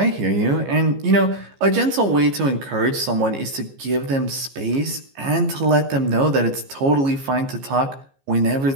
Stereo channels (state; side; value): late; left; 15 ms